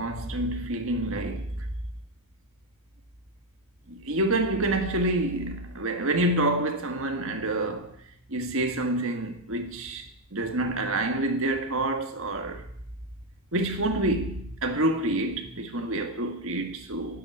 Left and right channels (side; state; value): both; normal; correlation 0.06